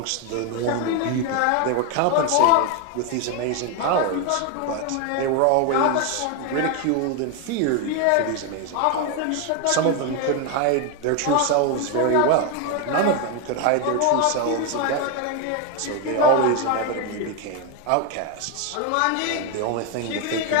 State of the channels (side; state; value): both; different; correlation 0.01